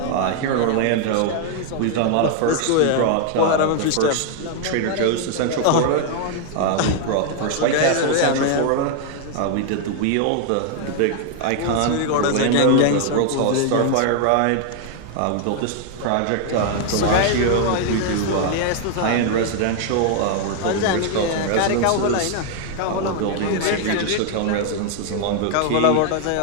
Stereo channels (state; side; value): different; both; correlation 0.00